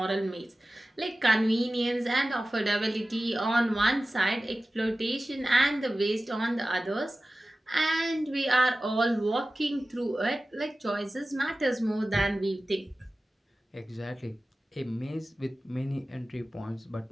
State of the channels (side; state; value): both; normal; correlation 0.96